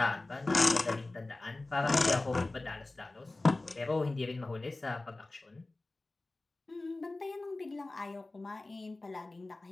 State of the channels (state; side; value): quieter; right; 3.0 dB